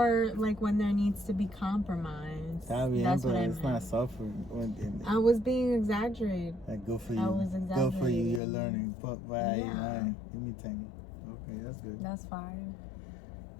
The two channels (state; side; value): drops out; right; at 8.4 s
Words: like when there needs to be compromise. That's what I meant. It's not suffering. I was being exaggerated. Like, good for you. I was exaggerating. Good for you. You're learning. But Yeah. Give me 10. Okay, that's good. That's fine.